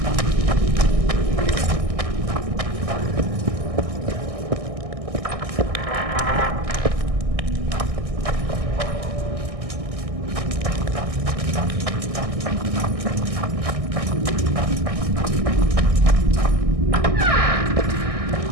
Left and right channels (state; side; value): late; left; 1.6 ms